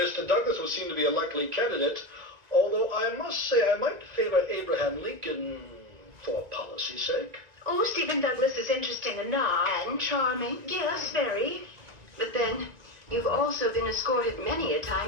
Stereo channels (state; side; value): late; left; 1.9 ms